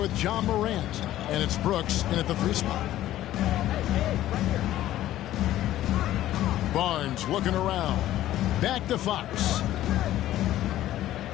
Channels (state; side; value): quieter; right; 13.7 dB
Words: with John Morant. And it's Brooks in at the 3 spot. Barnes looking around. Back to Fox.